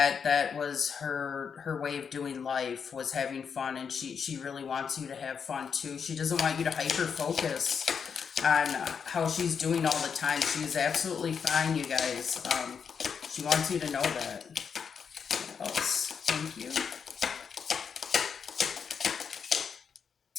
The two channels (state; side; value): quieter; right; 6.6 dB